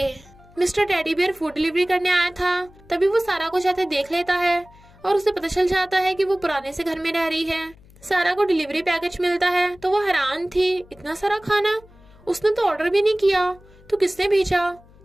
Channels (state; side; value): noise; left; hum, 26 dB below the sound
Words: Mister teddy bear food delivery करने आया था, तभी वो सारा को जाते देख लेता है और उसे पता चल जाता है कि वो पुराने से घर में रह रही है। सारा को डिलीवरी पैकेज मिलता है तो वो हैरान थी, इतना सारा खाना उसने तो ऑर्डर भी नहीं किया, तो किसने भेजा?